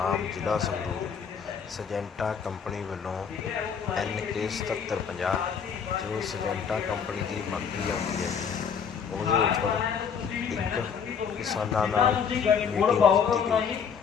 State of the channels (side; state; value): right; quieter; 6.9 dB